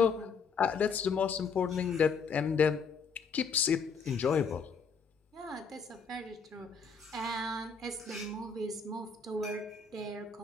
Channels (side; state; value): right; quieter; 5.4 dB